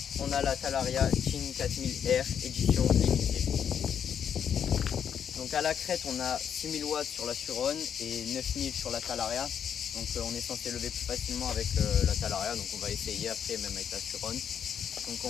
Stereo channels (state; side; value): quieter; right; 8.3 dB